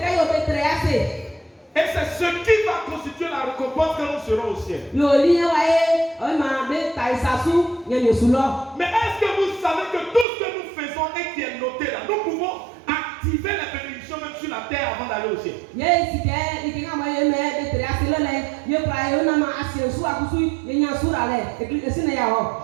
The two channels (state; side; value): drops out; left; at 10.2 s